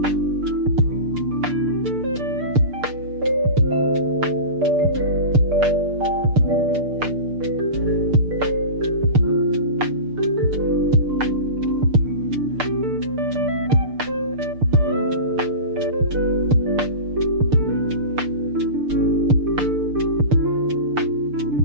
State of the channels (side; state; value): left; late; 6.7 ms